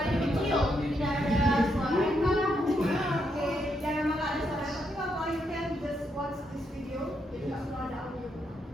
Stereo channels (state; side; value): normal; both; correlation 0.79